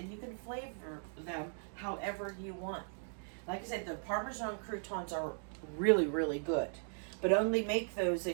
you can flavor them however you want. Like I said, the Parmesan croutons are really, really good, but only make those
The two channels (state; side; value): silent; left; digital silence